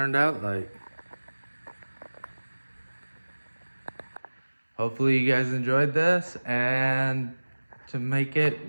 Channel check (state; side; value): inverted; both; correlation -1.00